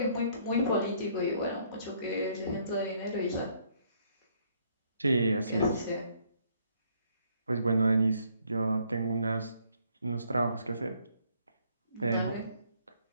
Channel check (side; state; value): both; inverted; correlation -0.67